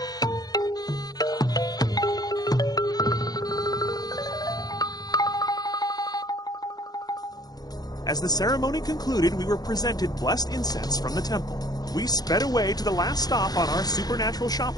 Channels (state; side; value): late; right; 0.19 ms